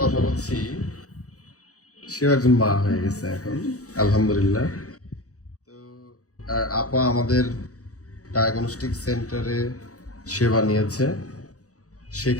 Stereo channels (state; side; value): late; right; 0.66 ms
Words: কথা বলছি, সেও একজন মা হয়ে গেছে এখন, আলহামদুলিল্লাহ। তো আপা আমাদের ডায়াগনস্টিক সেন্টারে সেবা নিয়েছে,